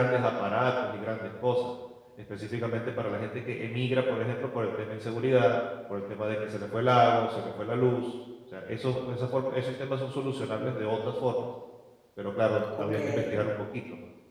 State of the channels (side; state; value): both; identical; correlation 1.00